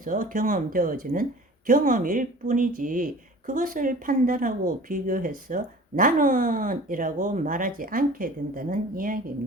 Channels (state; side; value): normal; both; correlation 0.43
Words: 경험되어지는 경험일 뿐이지, 그것을 판단하고 비교해서 나는 이라고 말하지 않게 된다는